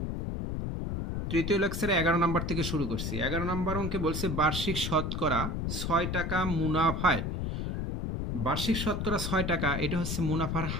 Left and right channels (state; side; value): noise; left; rumble, 2 dB below the sound